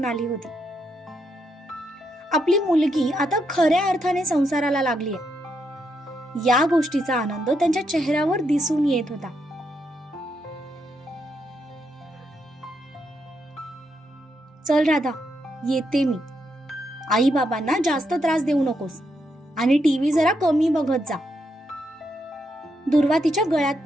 आली होती. आपली मुलगी आता खऱ्या अर्थाने संसाराला लागली आहे, या गोष्टीचा आनंद त्यांच्या चेहऱ्यावर दिसून येत होता. चल राधा, येते मी. आई बाबांना जास्त त्रास देऊ नकोस आणि टीव्ही जरा कमी बघत जा. दुर्वा तिच्या गळ्यात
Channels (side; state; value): both; normal; correlation 0.80